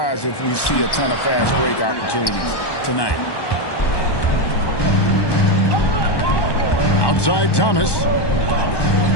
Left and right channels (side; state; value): right; late; 1.1 ms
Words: if we see a ton of fast break opportunities tonight. Outside Thomas.